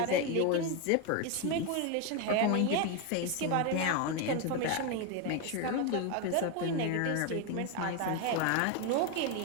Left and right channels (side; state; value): both; different; correlation 0.02